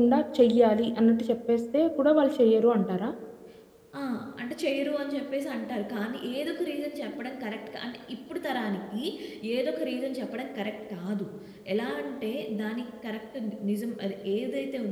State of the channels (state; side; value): identical; both; correlation 1.00